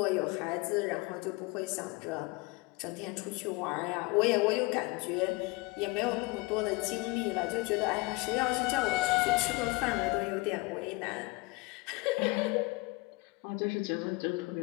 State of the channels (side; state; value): right; quieter; 24.6 dB